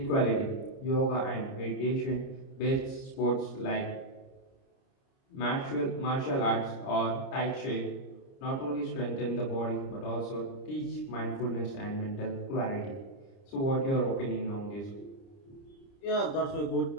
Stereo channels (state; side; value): late; right; 30 ms